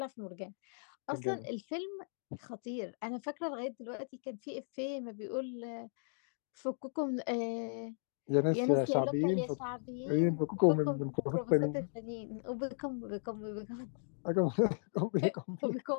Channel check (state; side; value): silent; right; digital silence